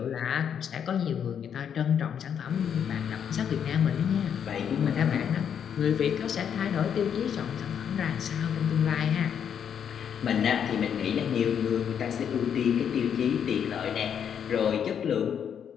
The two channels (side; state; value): right; quieter; 8.2 dB